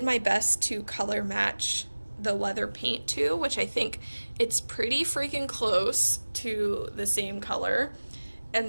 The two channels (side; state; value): both; inverted; correlation -1.00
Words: my best to color match the leather paint to, which I think it's pretty freaking close to the same color.